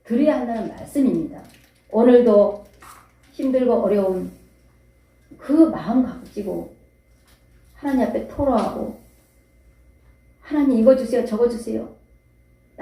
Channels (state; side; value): identical; both; correlation 1.00